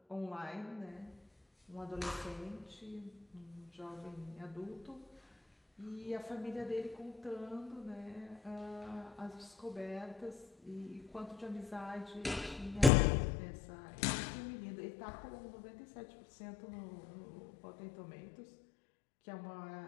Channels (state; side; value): drops out; right; at 12.9 s